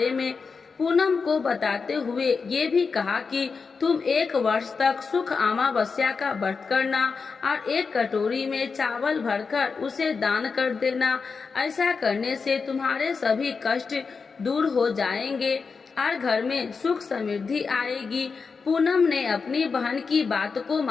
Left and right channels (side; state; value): right; quieter; 5.0 dB